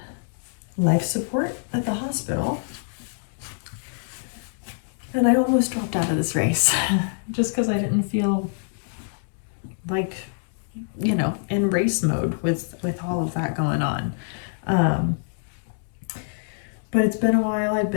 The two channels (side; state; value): right; silent; digital silence